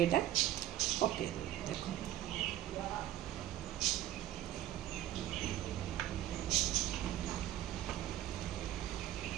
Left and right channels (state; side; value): quieter; left; 13.0 dB